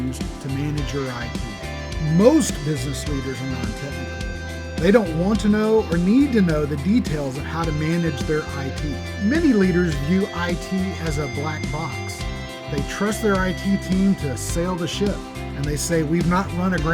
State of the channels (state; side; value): identical; both; correlation 1.00